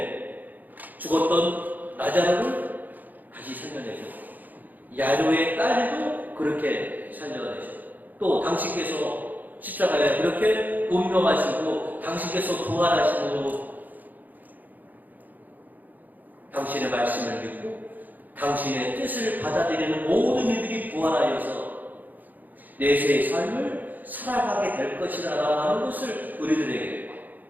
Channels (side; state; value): left; late; 0.084 ms